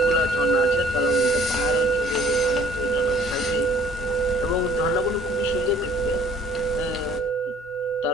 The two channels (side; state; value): both; normal; correlation 0.56